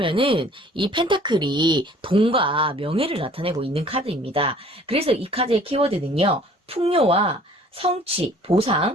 이 펜타클이 돈과 명예를 나타내고 있는 카드입니다. 그래서 이 카드의 키워드는요, 풍요와 성취,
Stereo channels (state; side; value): normal; both; correlation 0.53